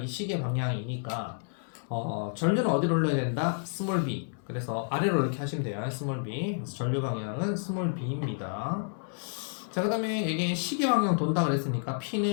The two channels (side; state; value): right; silent; digital silence